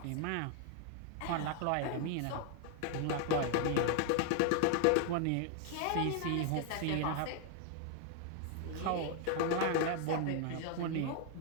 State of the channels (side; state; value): both; different; correlation 0.00